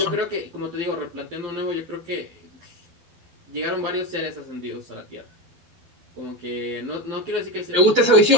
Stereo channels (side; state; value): left; late; 11 ms